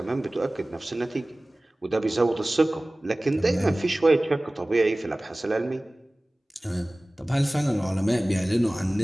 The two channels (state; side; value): normal; both; correlation 0.98